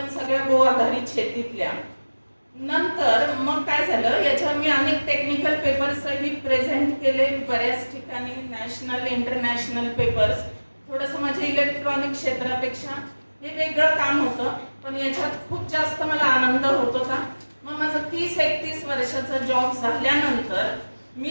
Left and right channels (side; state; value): both; inverted; correlation -1.00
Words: सगळ्या गो आधारित शेतीतल्या. नंतर मग काय झालं, याच्यावर मी अनेक टेक्निकल पेपर्सही प्रेझेंट केले बऱ्याच ठिकाणी, नॅशनल इंटरनॅशनल पेपर्स. थोडंसं माझ्या इलेक्ट्रॉनिक क्षेत्रापेक्षा हे वेगळं काम होतं, पण याच्यात खूप जास्त मला आनंद होत होता. मग माझं 30-31 वर्षाचा जॉब झाल्यानंतर